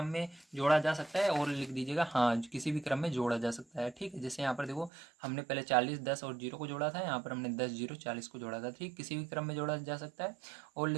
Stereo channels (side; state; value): left; drops out; at 4.9 s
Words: में जोड़ा जा सकता है, और लिख दीजिएगा हाँ किसी भी क्रम में जोड़ा जा सकता है। ठीक है, जैसे यहाँ पर देखो हमने पहले 40 10 और 0 को जोड़ा था, यहाँ पर हमने 10 0 40 को जोड़ा था। ठीक, किसी भी क्रम में जोड़ा जा सकता है, और